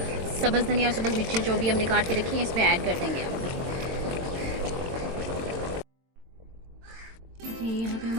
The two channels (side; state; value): left; late; 22 ms